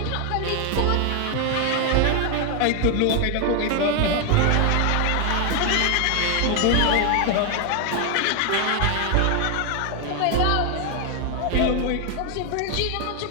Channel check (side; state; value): both; different; correlation 0.01